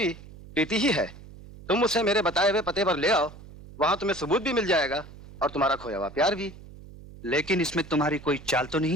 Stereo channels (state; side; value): noise; right; hum, 18 dB below the sound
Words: प्रीति ही है। तुम उसे मेरे बताए हुए पते पर ले आओ, वहां तुम्हें सबूत भी मिल जाएगा और तुम्हारा खोया हुआ प्यार भी। लेकिन इसमें तुम्हारी कोई चाल तो